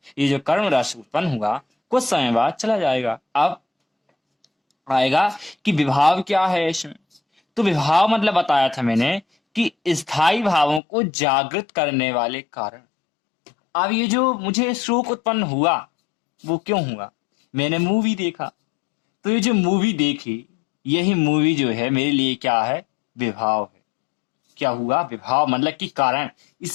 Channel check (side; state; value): right; drops out; at 10.8 s